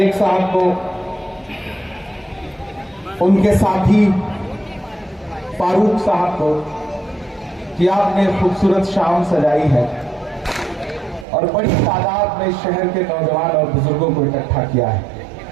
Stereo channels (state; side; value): drops out; left; at 11.2 s